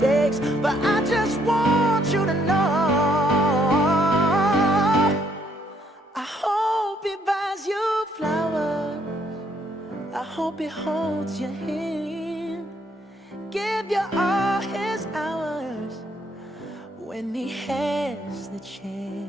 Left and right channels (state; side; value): normal; both; correlation 0.69